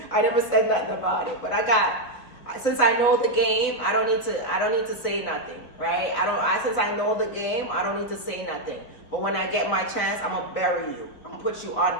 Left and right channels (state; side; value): late; right; 3.7 ms